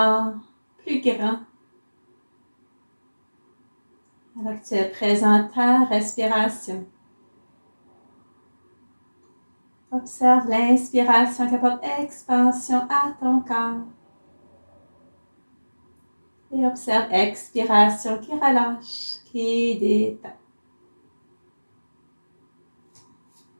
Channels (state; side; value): inverted; both; correlation -1.00